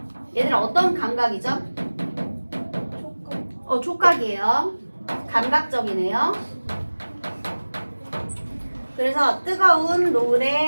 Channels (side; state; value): both; inverted; correlation -1.00